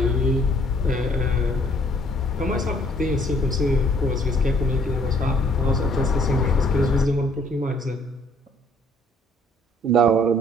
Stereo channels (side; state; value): both; normal; correlation 0.61